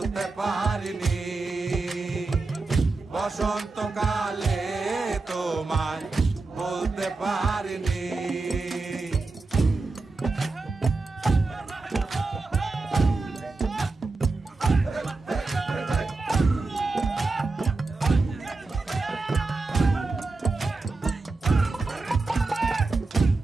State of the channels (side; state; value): left; quieter; 3.6 dB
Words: পারিনি। বসন্তকালে তোমায় বলতে পারিনি।